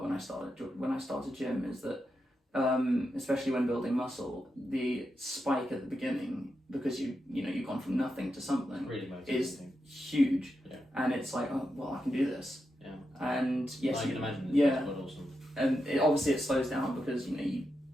when I started gym, is that especially when building muscle, the spike at the beginning, because you've gone from nothing to something, really is huge. Yeah. And it's like, oh well, I can do this. Yeah. And yes, I can imagine. Yeah. Quite awesome. And obviously it slows down because you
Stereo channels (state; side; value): normal; both; correlation 0.86